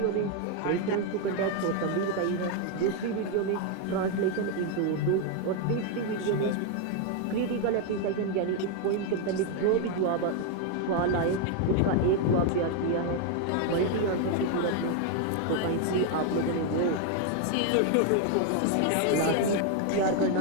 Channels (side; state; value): both; different; correlation 0.01